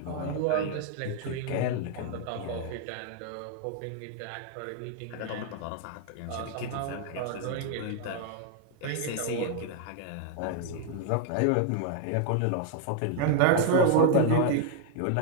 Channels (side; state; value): both; different; correlation 0.00